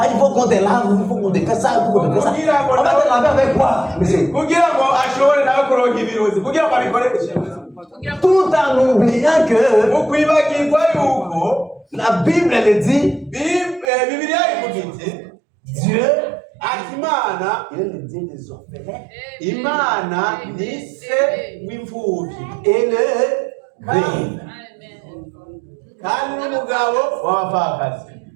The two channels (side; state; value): left; drops out; at 13.9 s